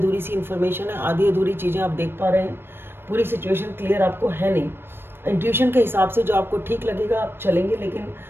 सी इन्फॉर्मेशन है, आधी अधूरी चीज़ें आप देख पा रहे हैं, पूरी सिचुएशन क्लियर आपको है नहीं। इंट्यूशन के हिसाब से जो आपको ठीक लगेगा आप चलेंगे, लेकिन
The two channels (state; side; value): late; left; 0.10 ms